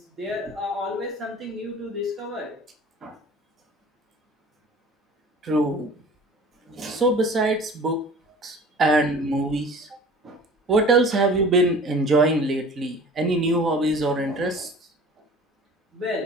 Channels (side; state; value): both; normal; correlation 0.43